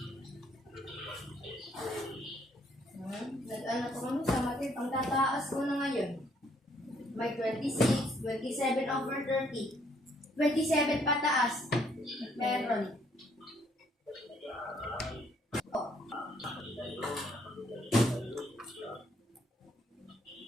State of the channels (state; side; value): normal; both; correlation 0.67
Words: Nag-ano ko kami sa matit. Ang tataas ko na ngayon. May 26, 27 over 30. 27 pataas. Meron.